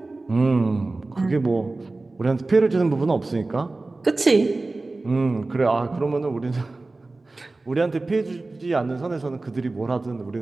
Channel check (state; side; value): quieter; left; 3.3 dB